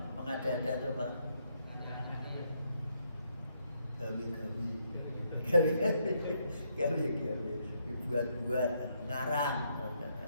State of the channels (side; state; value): both; inverted; correlation -0.75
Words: mengada-ada itu apa? Gawi. Dibuat-buat, ngarang.